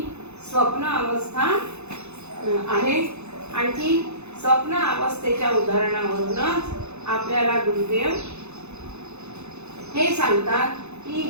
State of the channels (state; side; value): late; left; 0.81 ms